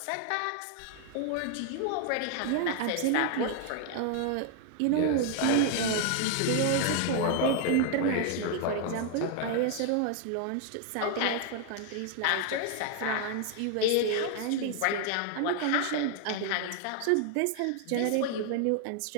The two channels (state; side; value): different; both; correlation 0.00